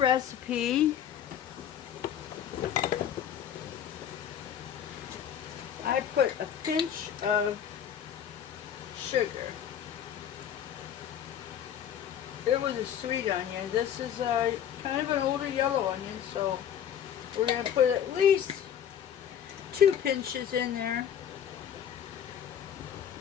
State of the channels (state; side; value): quieter; right; 9.3 dB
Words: I put a pinch of sugar. It was a sweet onion. This is kind of an older yellow onion, so we're going to put at least 2 pinches in there.